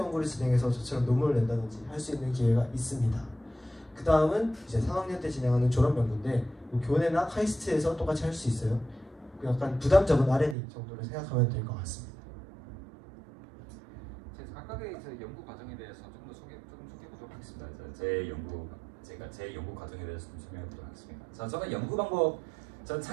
진행해서 저처럼 논문을 낸다든지 할 수 있는 기회가 있습니다. 그 다음은 이제 3학년 때 진행하는 졸업 연구인데 교내나 카이스트에서 똑같이 할 수 있어요. 약간 부담 적은 R&D 정도로 생각하면 될 것 같습니다. 각각의 연구 과정에 대해서 조금 소개해보도록 하겠습니다. 제 연구 과정에 대해서 좀 설명해보도록 하겠습니다. 자, 저는 연구 방법, 전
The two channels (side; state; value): left; drops out; at 10.6 s